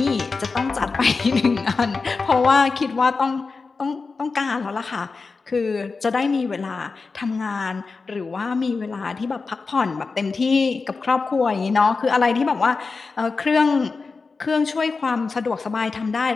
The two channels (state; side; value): quieter; right; 4.3 dB